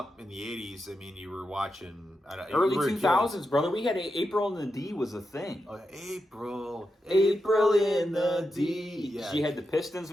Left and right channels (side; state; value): both; normal; correlation 0.88